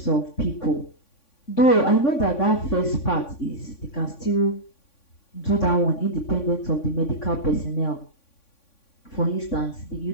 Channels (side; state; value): right; late; 3.6 ms